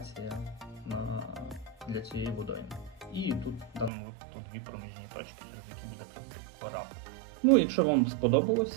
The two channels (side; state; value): left; drops out; at 3.9 s